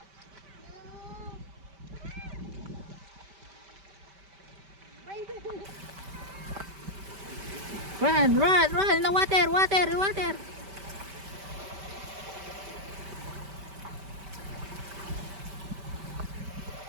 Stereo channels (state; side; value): late; left; 5.1 ms